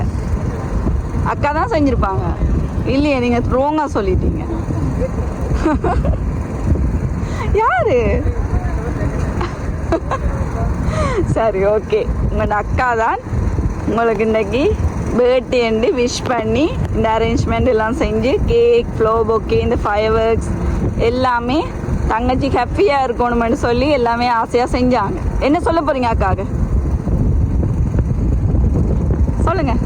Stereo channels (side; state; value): both; identical; correlation 1.00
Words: அக்கா தான் செஞ்சுருப்பாங்க. இல்லையே, நீங்கள் ரோங்காக சொல்லிட்டீங்க. யாரு? சரி, ஓகே, உங்களோட அக்கா தான் உங்களுக்கு இன்னைக்கு பர்த்டேன்னு விஷ் பண்ணி இந்த அரேஞ்ச்மெண்ட் எல்லாம் செஞ்சு கேக், ஃப்ளோ பொக்கே, இந்த ஃபயர் ஒர்க்ஸ் எல்லாமே தங்கச்சி ஹாப்பியாக இருக்கணும்னு சொல்லி எல்லாமே ஆசையாக செஞ்சாங்க. என்ன சொல்ல போகிறீங்க அக்காவுக்கு? சொல்லுங்க.